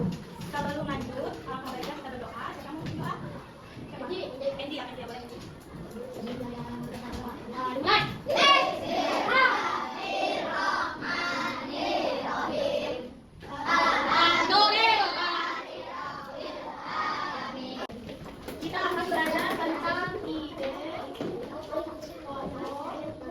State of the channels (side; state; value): both; identical; correlation 1.00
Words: Sebelum lanjut, alangkah baiknya kita berdoa. Siapa mau berdoa? Endi ya, Endi ya, boleh. Mulai. Kita akan belajar tentang ide pokok